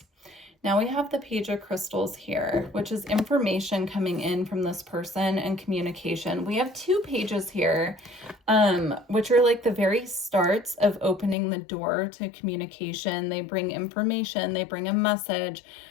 Now we have the Page of Crystals here, which is information coming in from this person and communication. We have two pages here, which are like the very starts of opening the door to communication. They bring information, they bring a message.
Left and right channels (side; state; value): right; drops out; at 11.4 s